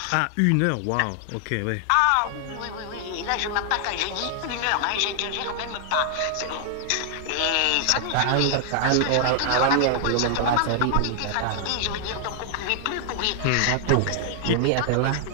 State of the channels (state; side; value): different; both; correlation 0.00